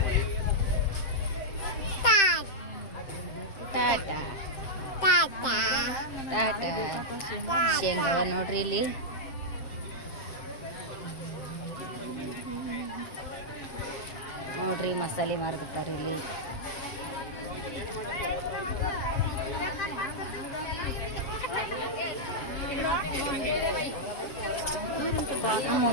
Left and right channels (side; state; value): right; late; 7.6 ms